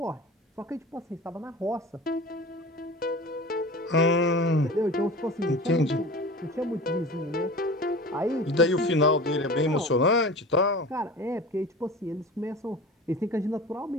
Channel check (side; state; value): both; normal; correlation 0.36